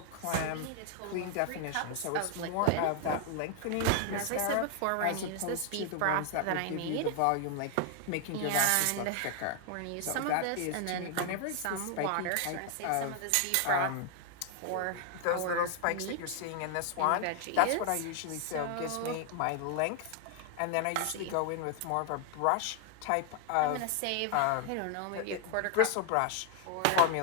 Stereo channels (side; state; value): both; different; correlation 0.00